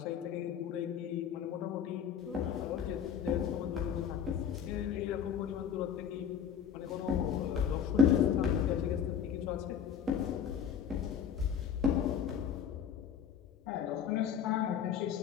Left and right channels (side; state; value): right; quieter; 8.1 dB